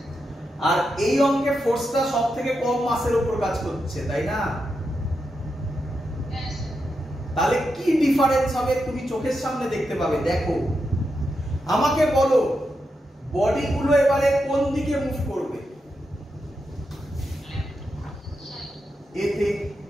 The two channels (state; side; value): normal; both; correlation 0.86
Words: আর এই অঙ্কে ফোর্সটা সবথেকে কম মাসের উপর কাজ করছে, তাই না? তাহলে কি ডিফারেন্স হবে তুমি চোখের সামনে দেখতে পাবে। দেখো আমাকে বলো, বডিগুলো এবারে কোন দিকে মুভ করবে? এতে।